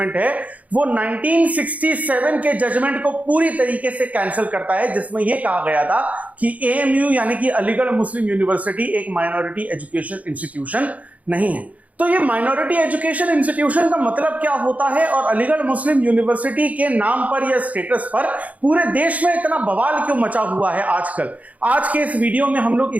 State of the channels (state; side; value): late; left; 0.071 ms